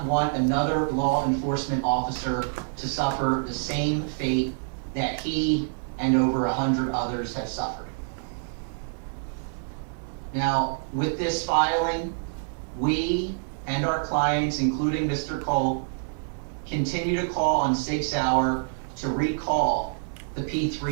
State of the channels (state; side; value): silent; left; digital silence